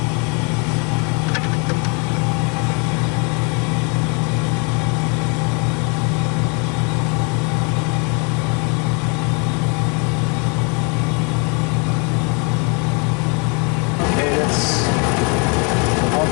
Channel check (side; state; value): right; quieter; 33.9 dB